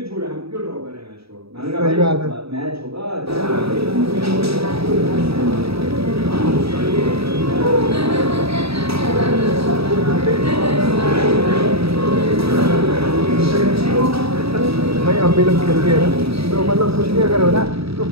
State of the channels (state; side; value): late; left; 0.77 ms